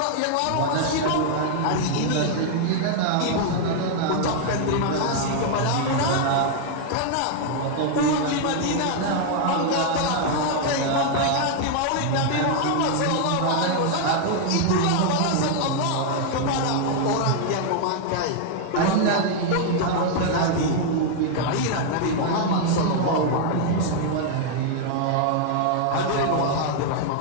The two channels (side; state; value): both; different; correlation 0.00